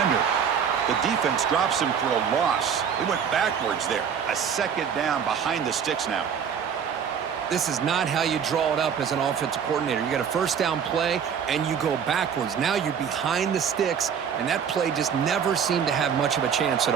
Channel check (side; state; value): left; quieter; 7.5 dB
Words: The defense drops him for a loss. They went backwards there. A 2nd down behind the sticks now. This is not how you draw it up as an offensive coordinator. You got a first down play, and you go backwards. Now you're behind the sticks, and that play just never seemed to have much of a chance at